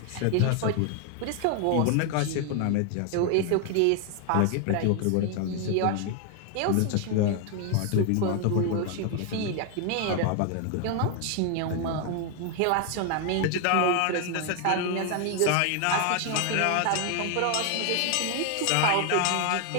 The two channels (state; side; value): different; both; correlation 0.00